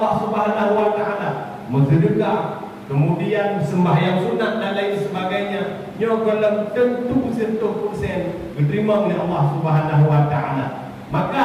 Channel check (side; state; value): both; identical; correlation 1.00